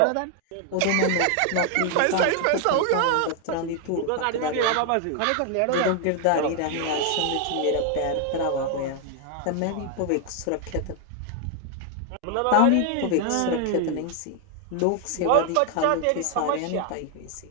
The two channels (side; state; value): both; different; correlation 0.00